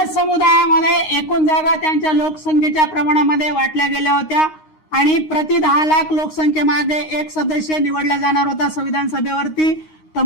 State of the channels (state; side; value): late; right; 9.6 ms